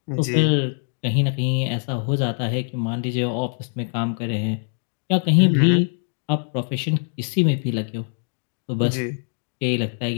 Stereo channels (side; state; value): right; silent; digital silence